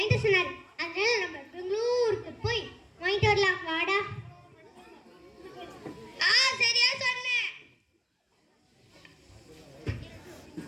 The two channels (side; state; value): both; identical; correlation 1.00